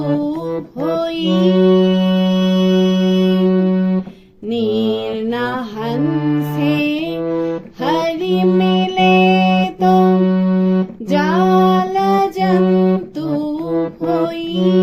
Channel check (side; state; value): both; identical; correlation 1.00